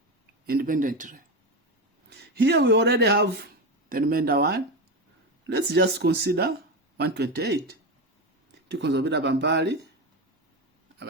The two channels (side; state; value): both; normal; correlation 0.17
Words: independently. Here we already have the remainder 1. Let's just consider 128. Tukonzobera bambali,